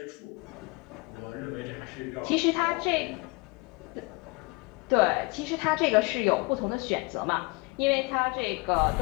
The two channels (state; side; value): quieter; right; 27.2 dB